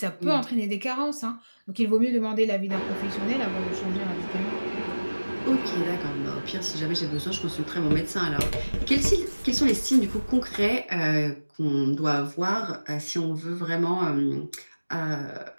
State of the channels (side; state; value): both; inverted; correlation -1.00